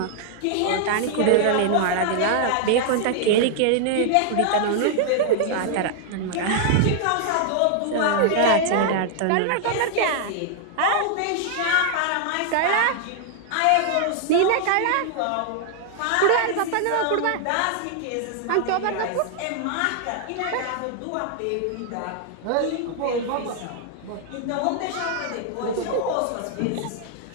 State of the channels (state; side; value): different; both; correlation 0.00